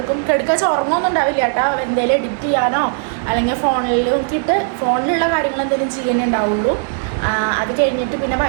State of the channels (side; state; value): left; silent; 60 dB below the other